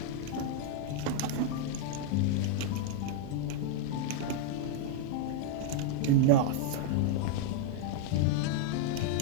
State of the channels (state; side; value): different; both; correlation 0.00